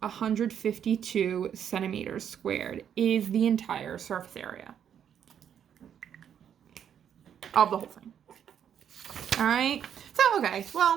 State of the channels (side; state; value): left; quieter; 8.9 dB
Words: 152 centimeters squared, is the entire surface area of the whole thing. All right. So, okay,